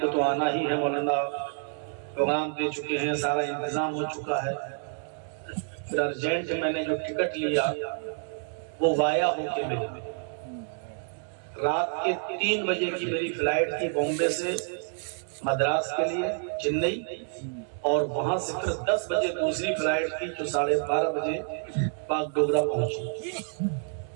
کو تو آنا ہی ہے مولانا, پروگرام دے چکے ہیں, سارا انتظام ہو چکا ہے. پھر ارجنٹ میں نے جو ٹکٹ لیا وہ وایا ہو کے ملا. رات کے 3 بجے کی میری فلائٹ تھی بامبے سے مدراس کے لیے چنئی, اور وہاں سے پھر 10 بجے دوسری فلائٹ تھی جو 12:30 بجے باگڈوگرا پہنچی.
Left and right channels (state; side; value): silent; left; 59 dB below the other